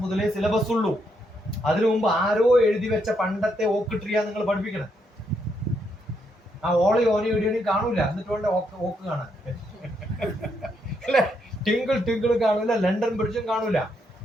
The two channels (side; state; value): both; normal; correlation 0.77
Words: മുതലേ സിലബസ് ഉള്ളൂ. അതിനു മുമ്പ് ആരോ എഴുതി വെച്ച പണ്ടത്തെ ഓക്ക് ട്രീയാ നിങ്ങൾ പഠിപ്പിക്കണം. ആ ഓളി ഓനി ഇടിയണി കാണൂല. എന്നിട്ട് വേണ്ട ഓക്ക് കാണാൻ അല്ലെ? ടിങ്കിൾ കാണൂല, ലണ്ടൻ ബ്രിഡ്ജും കാണൂല.